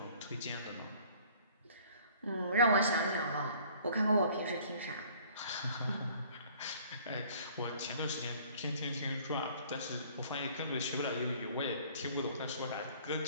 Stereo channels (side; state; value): both; inverted; correlation -0.54